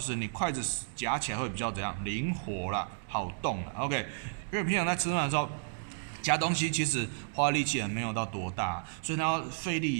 你筷子夹起来会比较怎样灵活啦，好动啦。OK， 因为平常在吃饭的时候夹东西其实花力气也没有到多大，所以它要费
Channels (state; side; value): silent; left; digital silence